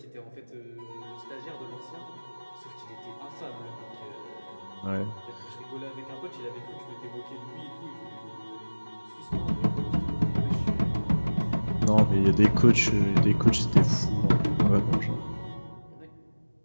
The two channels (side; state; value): both; inverted; correlation -1.00